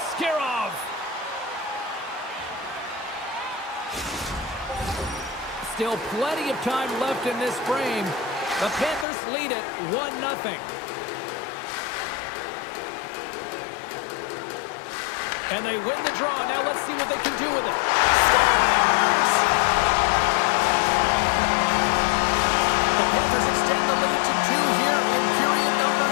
Still plenty of time left in this frame. The Panthers lead it 1-0. And they win the draw. Now let's see what they can do with it. Scores! The Panthers extend the lead to 2 here in period number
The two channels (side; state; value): right; drops out; at 9.1 s